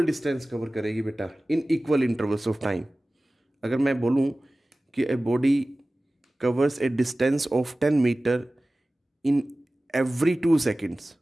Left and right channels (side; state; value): both; normal; correlation 0.97